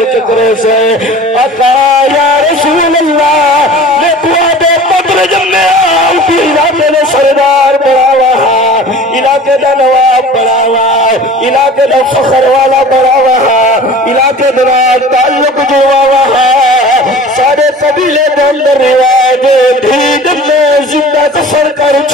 کے کرے سے آقا یا رسول اللہ میں دعا دے پتر جمعیا کی علاقے نے سردار بڑا وہاں علاقے دا نواب بڑا وہاں علاقے دا فخر والا بڑا وہاں علاقے دا تعلق جو وہاں سارے قبیلے دے اندر رواج دھید میں زندہ کفر کر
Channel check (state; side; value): normal; both; correlation 0.42